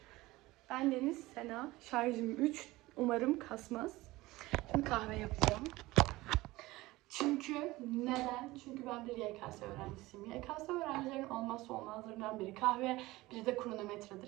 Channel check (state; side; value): quieter; left; 19.4 dB